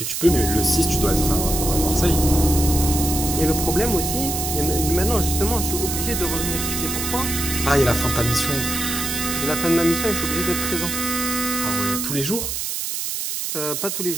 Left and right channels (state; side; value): noise; right; hiss, 3 dB below the sound